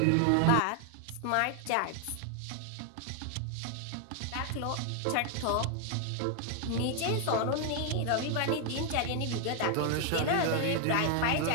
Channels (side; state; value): both; different; correlation 0.00